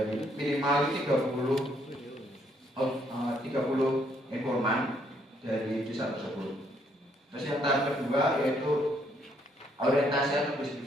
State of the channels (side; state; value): both; normal; correlation 0.70